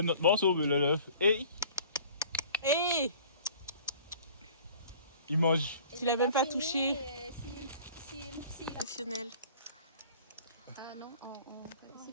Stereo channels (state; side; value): inverted; both; correlation -0.48